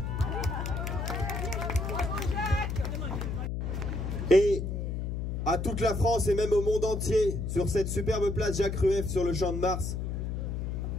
Et à toute la France et même au monde entier, sur cette superbe place Jacques Rueff sur le Champ de Mars,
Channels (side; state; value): left; noise; hum, 2 dB below the sound